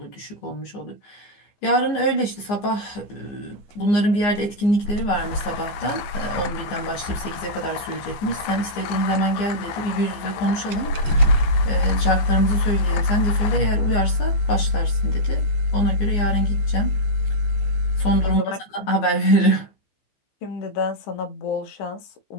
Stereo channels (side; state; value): right; late; 15 ms